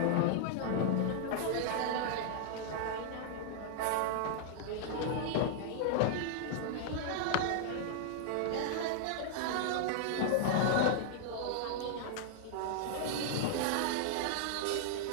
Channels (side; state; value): both; different; correlation -0.01